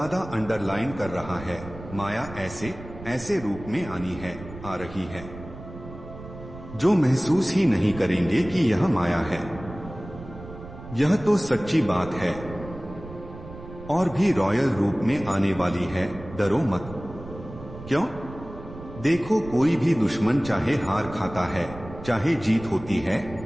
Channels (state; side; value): noise; right; rumble, 14 dB below the sound